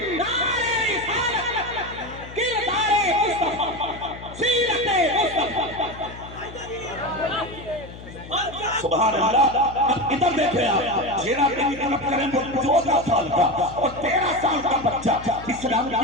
सुभान अल्लाह। इधर देखे आप, जेरा की तलब करें वो 14 साल का और 13 साल का बच्चा। इस्लाम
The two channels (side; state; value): left; noise; hum, 15 dB below the sound